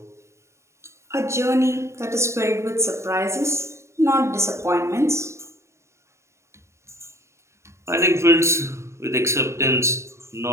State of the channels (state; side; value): late; left; 0.14 ms